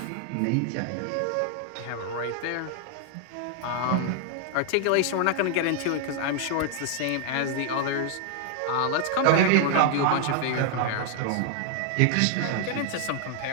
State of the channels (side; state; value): both; different; correlation 0.00